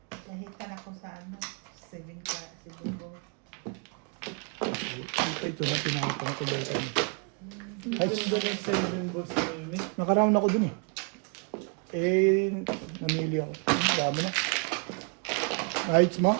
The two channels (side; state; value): left; quieter; 37.6 dB